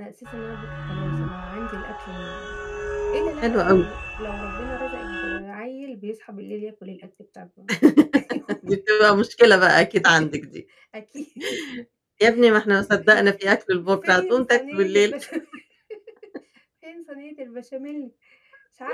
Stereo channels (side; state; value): both; identical; correlation 1.00